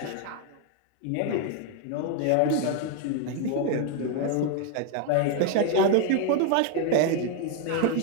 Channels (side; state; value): both; different; correlation 0.01